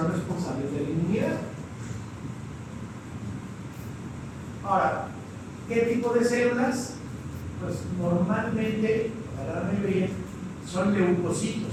responsables de la inmunidad. Ahora, ¿qué tipo de células? Pues normalmente, la gran mayoría, son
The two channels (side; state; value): both; identical; correlation 1.00